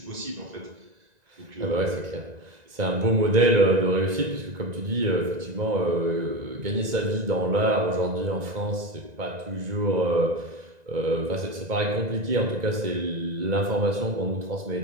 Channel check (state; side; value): late; left; 2.0 ms